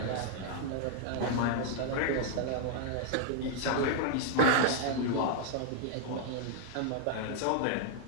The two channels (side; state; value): both; different; correlation -0.01